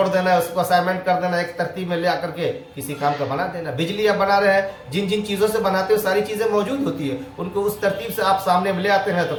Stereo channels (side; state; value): both; identical; correlation 1.00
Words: دینا ہے، اس کو اسائنمنٹ کر دینا، ایک ترتیب میں لے آ کر کے کسی کام کا بنا دینا۔ بجلی آپ بنا رہے ہیں، جن جن چیزوں سے بناتے ہو ساری چیزیں موجود ہوتی ہے، ان کو اس ترتیب سے آپ سامنے لے آتے ہیں تو